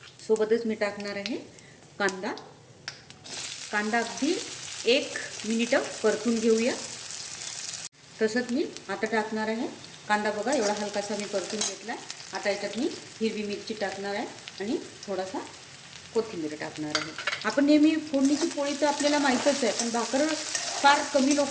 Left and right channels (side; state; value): both; identical; correlation 1.00